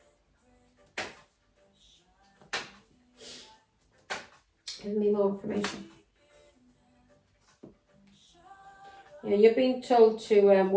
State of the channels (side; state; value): both; identical; correlation 1.00